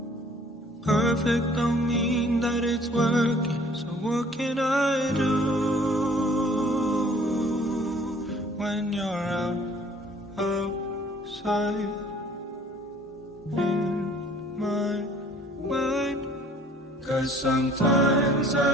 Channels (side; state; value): both; normal; correlation 0.55